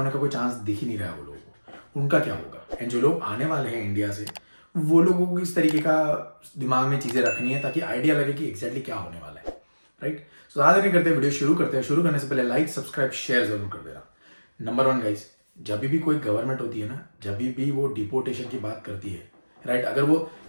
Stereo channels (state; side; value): inverted; both; correlation -1.00